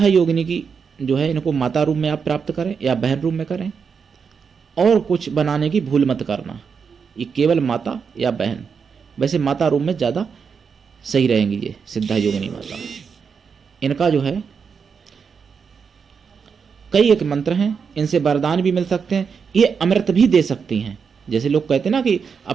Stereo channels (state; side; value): quieter; left; 6.1 dB